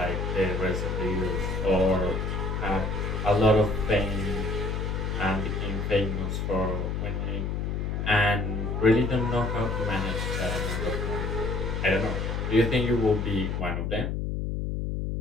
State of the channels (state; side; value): noise; left; hum, 1 dB below the sound